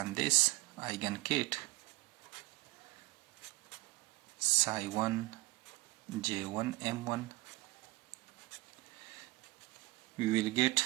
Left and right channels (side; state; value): left; quieter; 21.0 dB